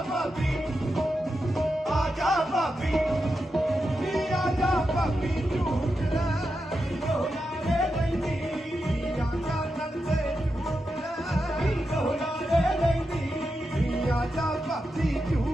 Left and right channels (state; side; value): normal; both; correlation 0.88